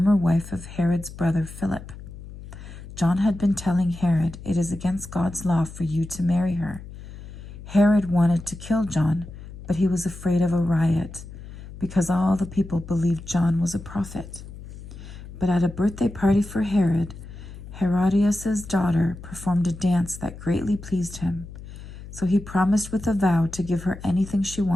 wife of Herod's brother Philip. John had been telling Herod, "It is against God's law for you to marry her." Herod wanted to kill John, but he was afraid of a riot, because all the people believed John was a prophet. But at a birthday party for Herod, Herodias' daughter performed a dance that greatly pleased him, so he promised with a vow to give her anything she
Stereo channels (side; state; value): left; noise; hum, 14 dB below the sound